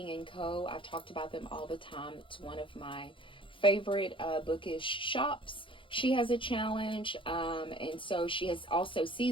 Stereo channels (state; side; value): late; right; 0.25 ms